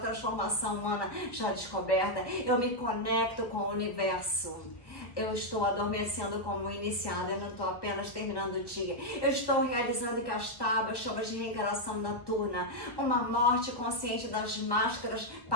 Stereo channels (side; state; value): right; late; 1.2 ms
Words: humana já descoberta. Eu me conecto com o universo. Eu estou adormecendo como iniciada, eu não estou apenas terminando o dia. Eu estou realizando Kastaba, chamas de reencarnação noturna, uma morte consciente das máscaras,